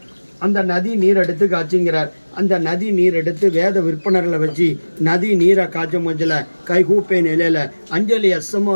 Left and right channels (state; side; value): inverted; both; correlation -1.00